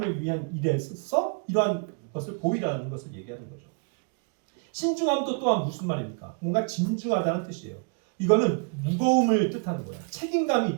위한 일에 써서 이러한 것을 보이라는 것을 얘기하는 거죠. 신중함도 또한 무슨 말입니까? 뭔가 진중하다는 뜻이에요. 이거는 무거움을 뜻하는 거예요. 책임감이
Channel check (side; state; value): left; quieter; 37.6 dB